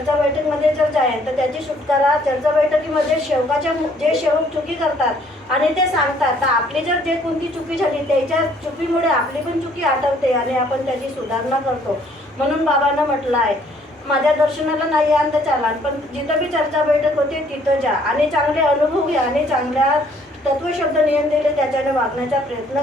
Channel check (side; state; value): both; normal; correlation 0.62